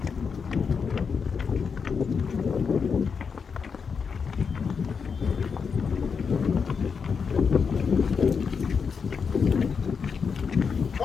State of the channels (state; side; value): quieter; right; 5.9 dB